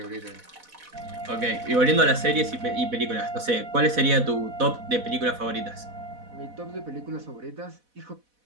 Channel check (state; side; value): late; left; 4.1 ms